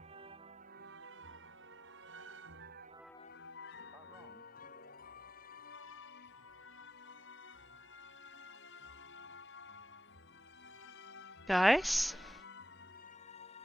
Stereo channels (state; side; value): normal; both; correlation 0.93